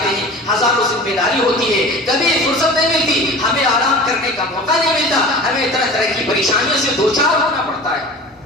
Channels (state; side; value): normal; both; correlation 0.38